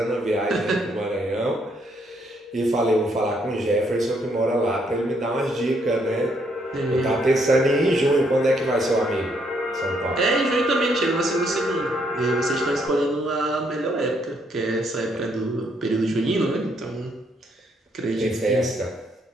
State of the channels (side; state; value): both; normal; correlation 0.72